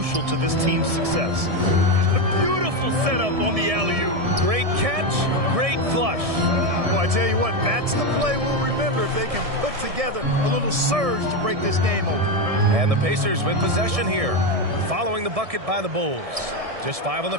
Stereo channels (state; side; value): late; left; 1.7 ms